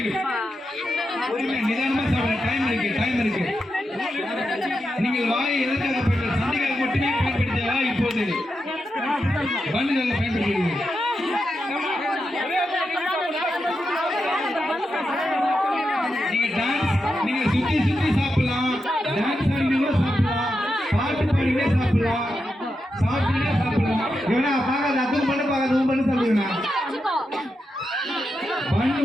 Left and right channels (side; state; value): both; normal; correlation 0.87